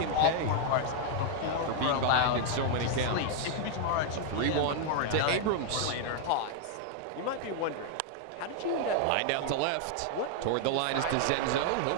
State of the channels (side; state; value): both; different; correlation 0.00